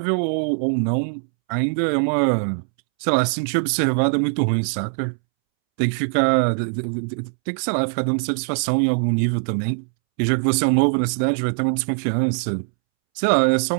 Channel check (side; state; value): left; silent; 65 dB below the other